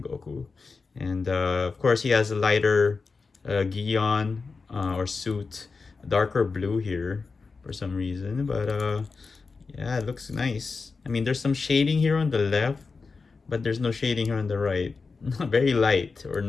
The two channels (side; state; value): right; quieter; 4.5 dB